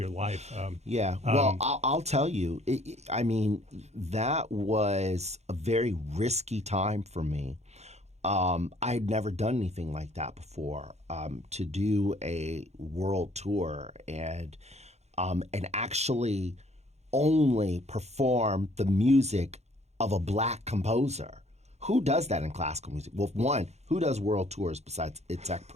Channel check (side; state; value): left; late; 0.32 ms